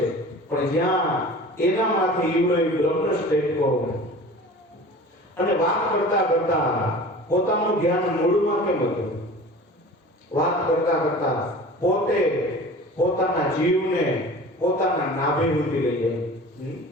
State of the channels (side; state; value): both; normal; correlation 0.40